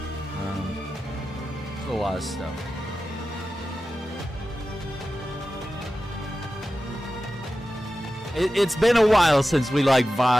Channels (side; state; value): both; normal; correlation 0.94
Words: A lot of stuff. It's been a while since we like